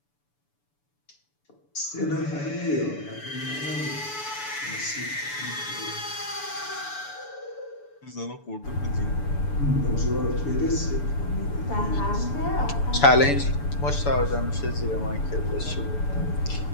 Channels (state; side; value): late; right; 6.9 ms